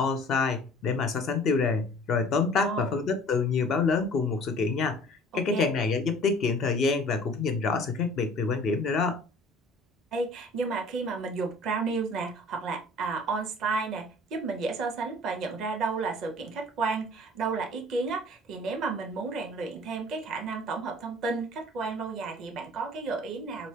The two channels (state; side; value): normal; both; correlation 0.49